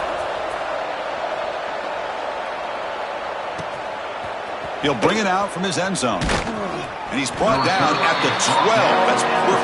He'll bring it out from his end zone. And he's brought down at the 12. That's poor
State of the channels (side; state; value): both; identical; correlation 1.00